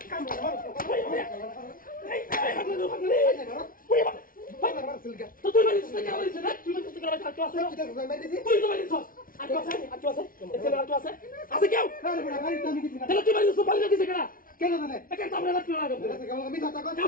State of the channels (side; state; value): right; late; 0.41 ms